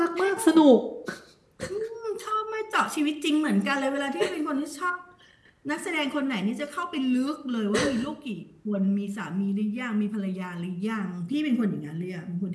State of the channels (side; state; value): both; identical; correlation 1.00